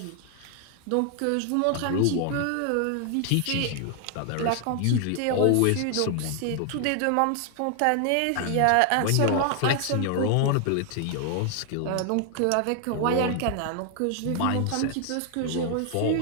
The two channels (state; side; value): different; both; correlation 0.00